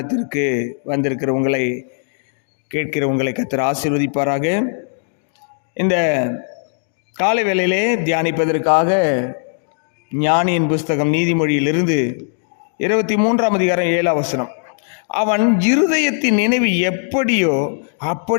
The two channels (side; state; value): right; silent; digital silence